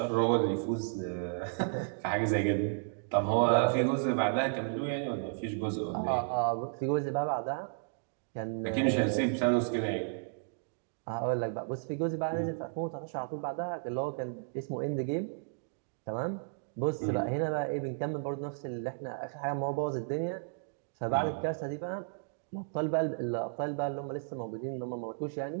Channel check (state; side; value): silent; left; digital silence